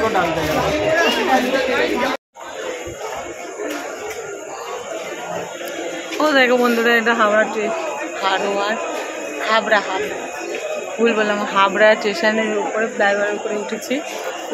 को डाल देगा। ও দেখো বন্ধুরা, এটা হাবড়া হাবড়া ভুল বললাম, হাবড়া স্টেশনের উপরে ফ্লাইওভারের উপরে উঠেছি,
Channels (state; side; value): identical; both; correlation 1.00